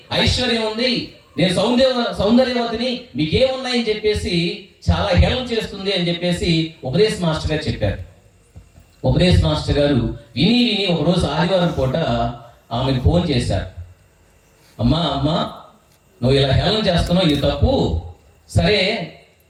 ఐశ్వర్యం ఉంది, నేను సౌందర్యవతిని, మీకేమున్నాయని చెప్పేసి చాలా హేళన చేస్తుంది అని చెప్పేసి ఉపదేశ మాస్టర్ గారు చెప్పారు. ఉపదేశ మాస్టర్ గారు విని ఒకరోజు ఆదివారం పూట ఆమెకు ఫోన్ చేశారు, అమ్మా నువ్వు ఇలా హేళన చేస్తున్నావు, ఇది తప్పు, సరే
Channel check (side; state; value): both; identical; correlation 1.00